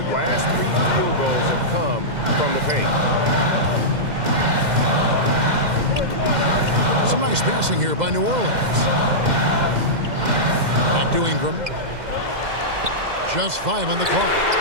last 3 field goals have come from the paint. Some nice passing here by New Orleans. Back to Ingram. Just 5 on the clock.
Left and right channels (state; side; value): late; left; 2.1 ms